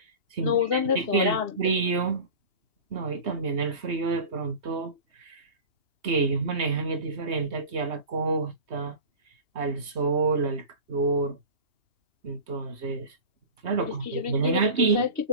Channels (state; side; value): late; left; 3.2 ms